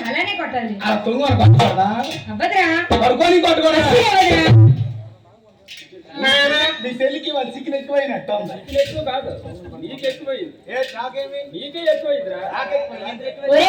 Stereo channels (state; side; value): identical; both; correlation 1.00